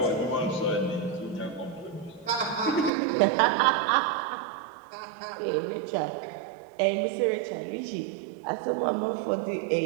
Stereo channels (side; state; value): left; drops out; at 2.9 s